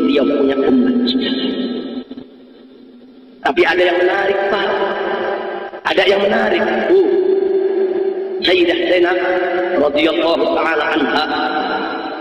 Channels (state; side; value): identical; both; correlation 1.00